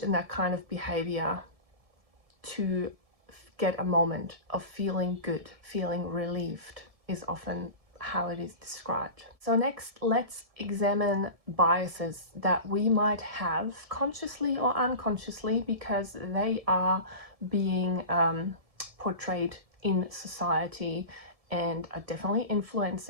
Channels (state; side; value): late; left; 1.7 ms